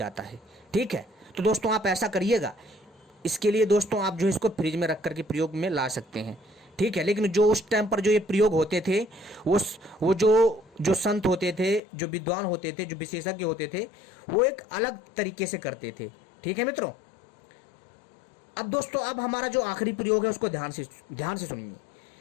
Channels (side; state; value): right; drops out; at 11.8 s